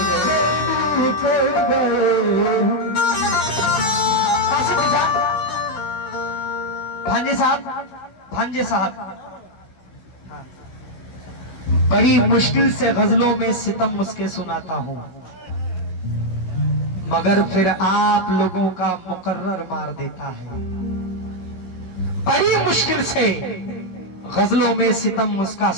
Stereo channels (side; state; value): right; late; 16 ms